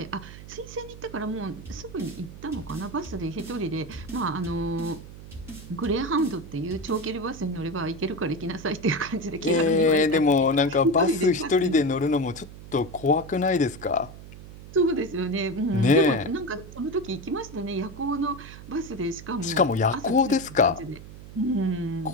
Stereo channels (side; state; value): right; noise; hum, 15 dB below the sound